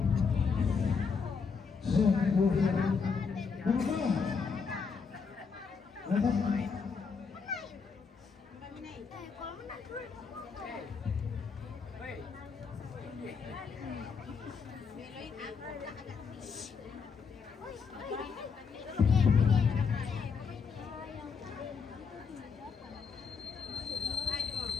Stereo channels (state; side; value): quieter; right; 5.5 dB